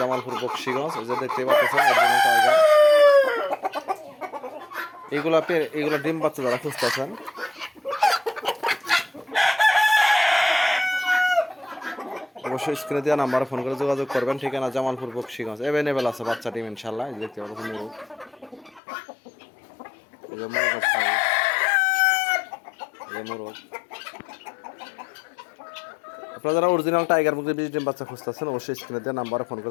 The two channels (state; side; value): drops out; right; at 18.8 s